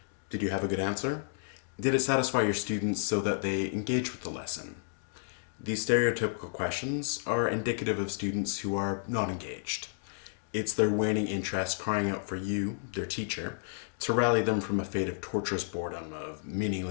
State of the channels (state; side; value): silent; right; digital silence